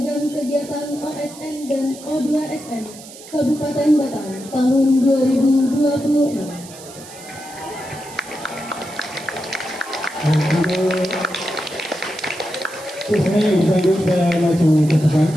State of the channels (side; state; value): right; noise; hiss, 17 dB below the sound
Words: kegiatan OSN dan O2SN Kabupaten Batang tahun 2026. Saya lanjut, saya maju ke depan.